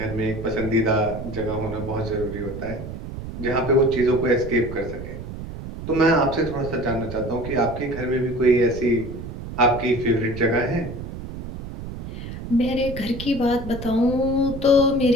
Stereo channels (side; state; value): right; noise; rumble, 9 dB below the sound